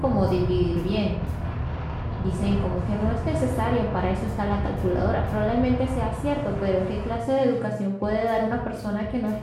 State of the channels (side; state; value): both; identical; correlation 1.00